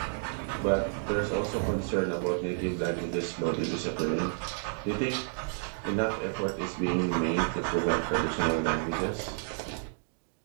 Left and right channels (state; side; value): silent; left; digital silence